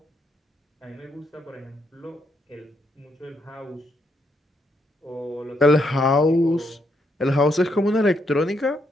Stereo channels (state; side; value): normal; both; correlation 0.77